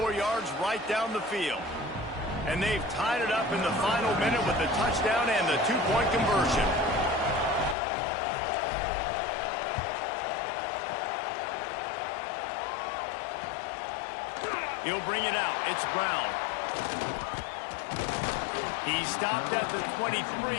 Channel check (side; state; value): right; drops out; at 7.8 s